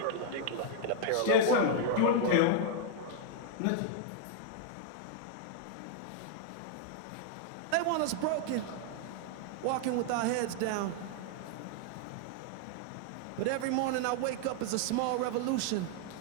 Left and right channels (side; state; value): both; different; correlation -0.01